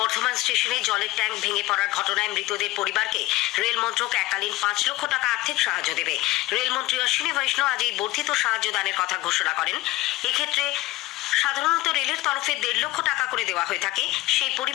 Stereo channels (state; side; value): quieter; right; 18.6 dB